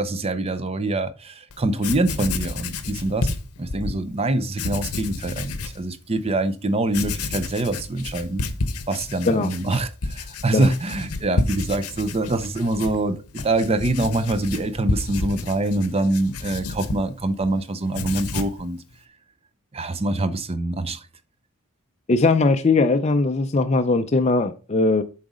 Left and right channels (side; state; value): both; normal; correlation 0.60